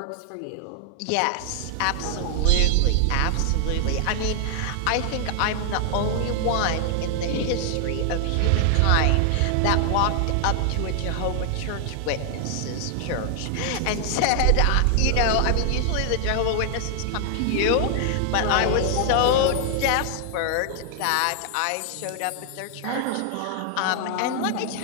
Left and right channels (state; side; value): different; both; correlation 0.00